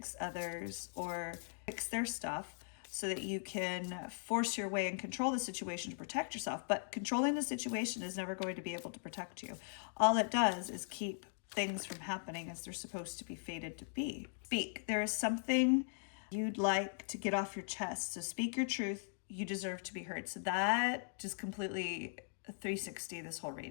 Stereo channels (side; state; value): right; silent; digital silence